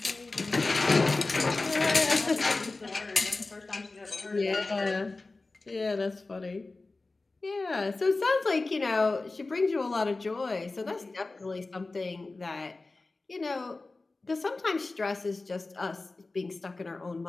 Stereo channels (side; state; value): right; quieter; 3.4 dB